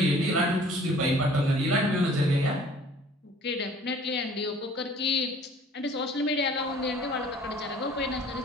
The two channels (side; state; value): both; normal; correlation 0.52